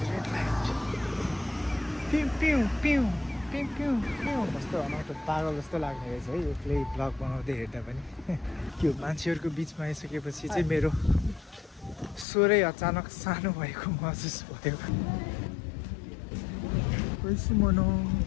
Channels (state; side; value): drops out; right; at 12.2 s